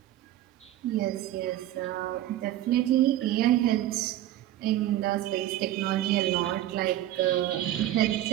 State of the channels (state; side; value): quieter; left; 13.8 dB